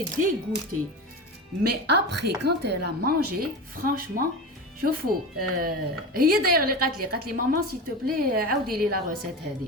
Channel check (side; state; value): both; normal; correlation 0.25